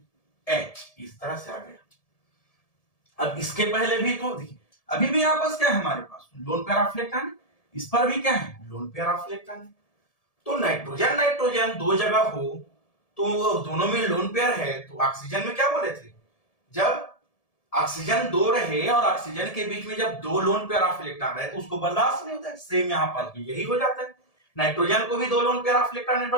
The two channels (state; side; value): late; right; 1.7 ms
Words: इस तरह से आ गया। अब इसके पहले भी तो देखिए अभी भी यहां पास क्या है, हमारे पास लोन पेयर ऑफ इलेक्ट्रॉन है, इस पर भी क्या है, लोन पेयर ऑफ इलेक्ट्रॉन है। तो नाइट्रोजन दो जगह हो तो दोनों में लोन पेयर है, तो ऑक्सीजन में क्या बोले थे, जब ऑक्सीजन 2 रहे और ऑक्सीजन के बीच में जब 2 लोन पेयर ऑफ इलेक्ट्रॉन रहे तो उसको बर्दाश्त नहीं होता है। सेम यहां पास भी यही हो जाता है, नाइट्रोजन को भी 2 लोन पेयर ऑफ इलेक्ट्रॉन